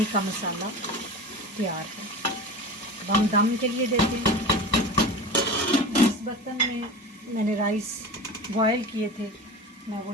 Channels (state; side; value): normal; both; correlation 0.32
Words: का मसाला तैयार है। अब हम दम के लिए देते हैं। इस बर्तन में मैंने राइस बॉयल किए थे, मैं